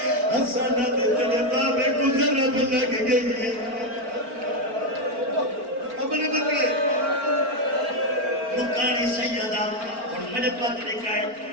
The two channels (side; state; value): left; late; 4.4 ms